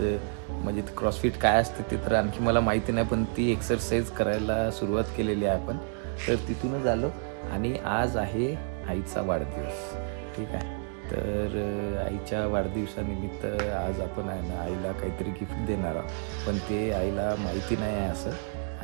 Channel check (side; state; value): left; silent; 58 dB below the other